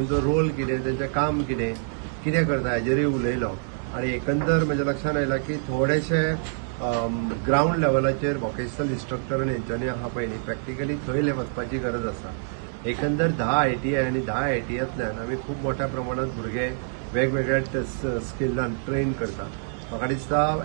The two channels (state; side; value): silent; left; digital silence